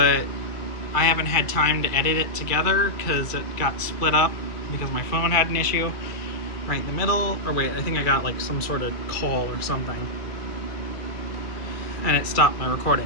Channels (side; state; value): right; late; 2.3 ms